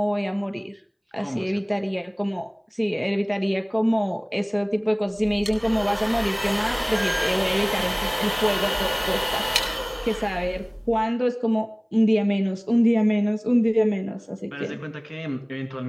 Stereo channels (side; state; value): both; identical; correlation 1.00